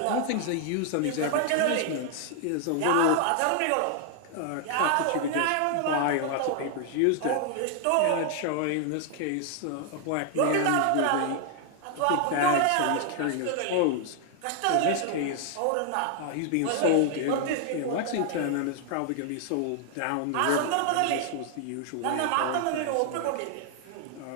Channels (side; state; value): both; different; correlation 0.00